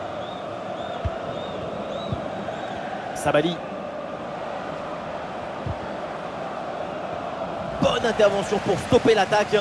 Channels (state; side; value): identical; both; correlation 1.00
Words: Sabali. Bonne intervention pour stopper l'attaque.